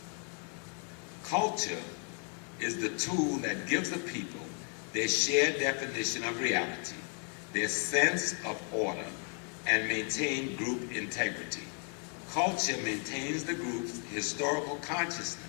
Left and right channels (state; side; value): quieter; right; 39.4 dB